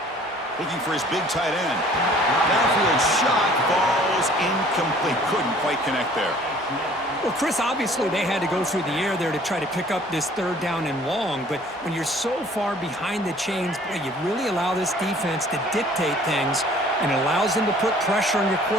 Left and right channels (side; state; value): both; normal; correlation 0.53